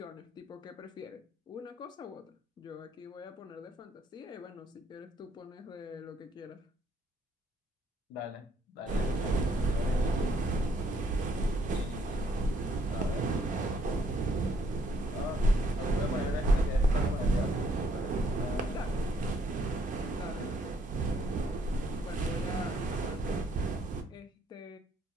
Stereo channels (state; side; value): normal; both; correlation 0.68